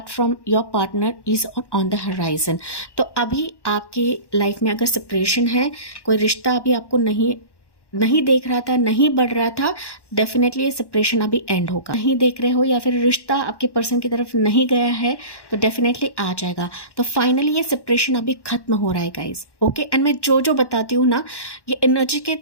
from your partner is on the horizon. तो अभी आपकी लाइफ में अगर सेपरेशन है, कोई रिश्ता अभी आपको नहीं देख रहा था, नहीं बढ़ रहा था, डेफिनेटली ये सेपरेशन अभी एंड होगा। नहीं देख रहे हो या फिर रिश्ता आपके पर्सन की तरफ नहीं गया है तो डेफिनेटली आ जाएगा। तो फाइनली ये सेपरेशन अभी खत्म हो रहा है गाइज। ओके, एंड मैं जो बताती हूँ ना, ये एनर्जी के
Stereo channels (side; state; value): right; late; 1.1 ms